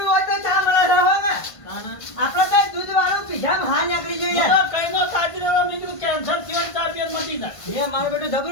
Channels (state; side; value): late; right; 1.5 ms